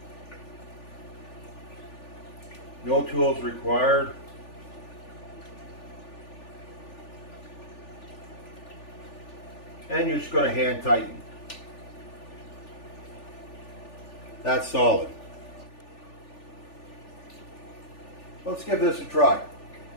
No tools required. And you're just going to hand tighten. That's solid. Let's give this a try.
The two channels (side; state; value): right; late; 3.4 ms